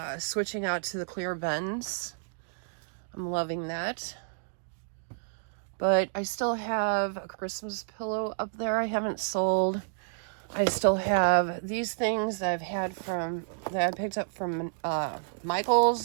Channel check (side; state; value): left; silent; digital silence